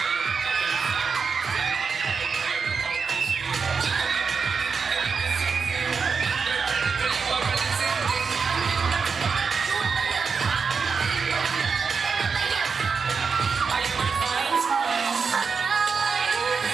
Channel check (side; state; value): left; quieter; 5.4 dB